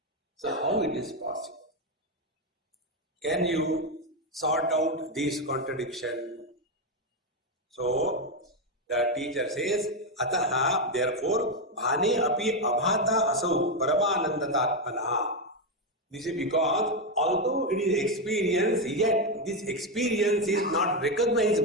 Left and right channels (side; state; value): both; normal; correlation 0.07